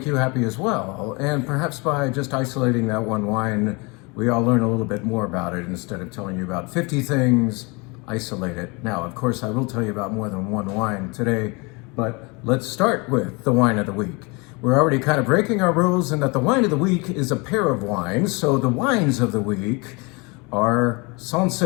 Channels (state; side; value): quieter; right; 28.4 dB